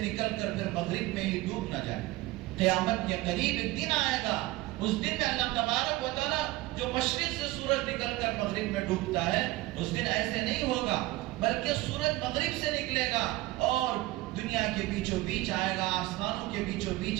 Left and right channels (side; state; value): left; quieter; 18.7 dB